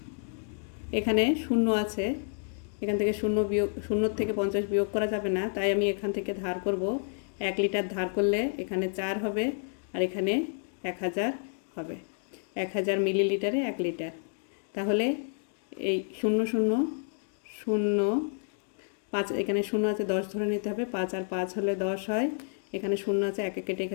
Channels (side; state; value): right; silent; digital silence